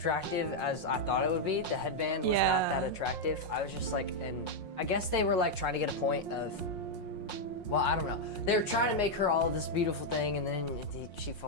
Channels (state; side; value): late; right; 5.5 ms